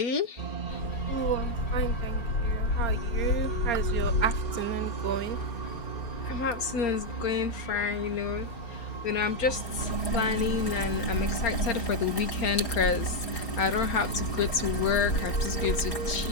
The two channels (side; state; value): right; late; 4.3 ms